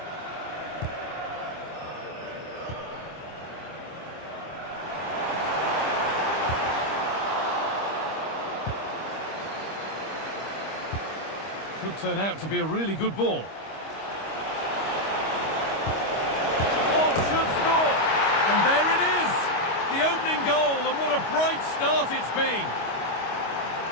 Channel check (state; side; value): late; right; 25 ms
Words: Could turn out to be a really good ball. Oh, should score! And there it is! The opening goal, and what a bright start it's been!